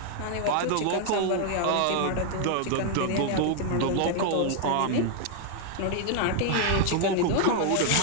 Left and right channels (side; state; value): both; different; correlation 0.00